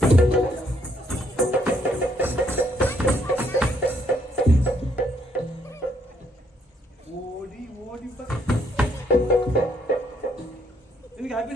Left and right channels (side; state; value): both; normal; correlation 0.70